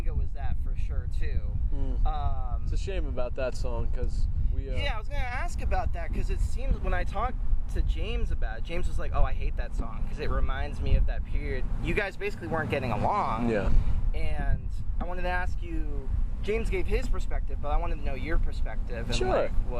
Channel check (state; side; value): identical; both; correlation 1.00